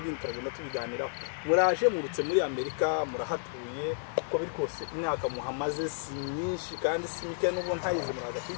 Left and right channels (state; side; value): silent; right; digital silence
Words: turagenda tubiganiraho. Muraje murutse muri Amerika murahatuye uko biri kose imyaka muhamaze si myinshi kandi si mike n'ubwo ntayize muraza